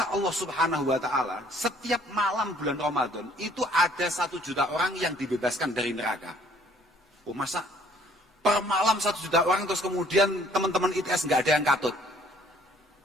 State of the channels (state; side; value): normal; both; correlation 0.59